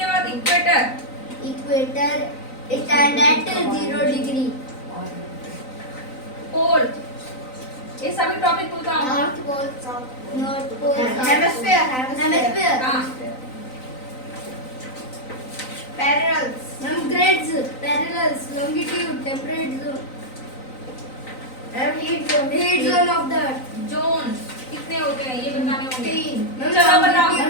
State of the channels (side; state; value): right; late; 3.9 ms